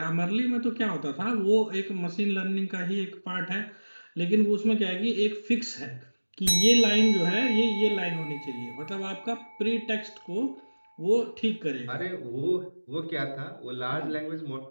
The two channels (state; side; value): inverted; both; correlation -1.00